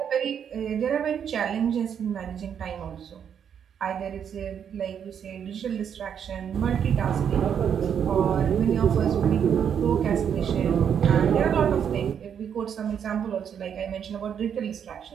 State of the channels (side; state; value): left; quieter; 8.1 dB